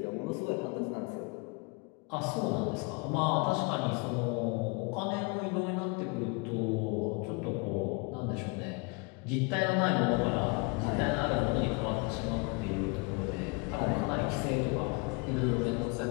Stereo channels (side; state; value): right; quieter; 29.5 dB